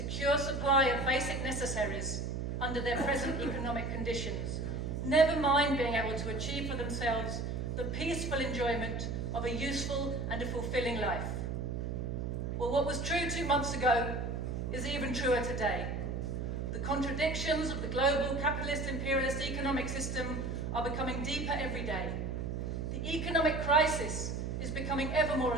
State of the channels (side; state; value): right; noise; hum, 3 dB below the sound